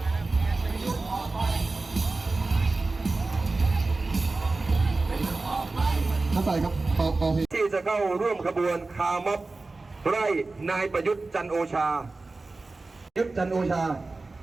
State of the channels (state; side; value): quieter; left; 3.5 dB